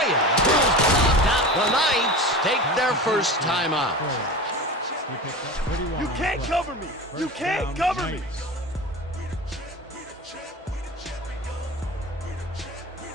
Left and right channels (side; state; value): both; normal; correlation 0.31